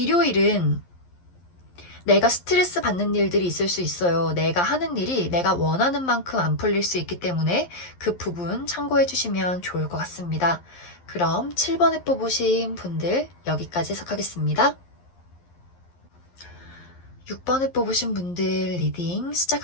내가 스트레스 받는 일들이 있을 수 있어요. 내가 하는 일이 내가 원하는 만큼 안 풀릴 수 있기 때문에 그 부분 참고해 주시면 좋을 것 같습니다. 그럼 7번에 뽑으신 분들 여기까지 해석하겠습니다. 6번에 뽑으신 분들 리딩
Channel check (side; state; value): right; late; 11 ms